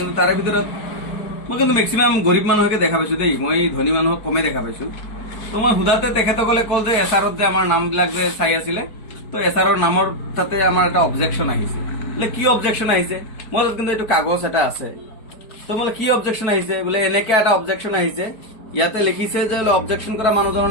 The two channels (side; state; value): right; late; 4.5 ms